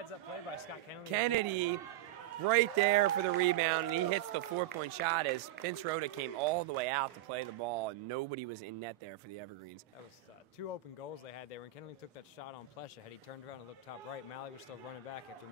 play by Scott Kennedy. Kennedy right there for the rebound, and he hits the 4-point shot as Vince Rhoda came all the way out to play the ball, and nobody was in net there for the Evergreens. That was 2 open goals they had there. When Kennedy took that shot on Plesha, had he turned around and looked top right, Malley was still running back after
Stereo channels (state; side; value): quieter; left; 13.2 dB